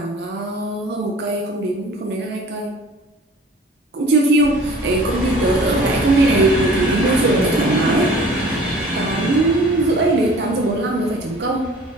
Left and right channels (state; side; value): normal; both; correlation 0.47